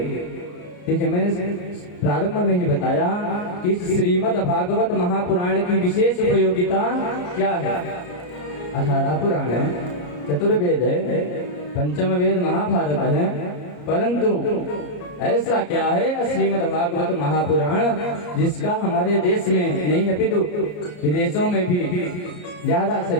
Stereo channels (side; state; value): right; late; 34 ms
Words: देखिए मैंने प्रारंभ में ही बताया कि श्रीमद् भागवत महापुराण की विशेष उपयोगिता क्या है। 18 पुराण है, चतुर्वेद है, पंचम वेद महाभारत है, परंतु ऐसा क्या है श्रीमद् भागवत महापुराण जिसका हमारे देश में नहीं अपितु विदेशों में भी ज्यादा से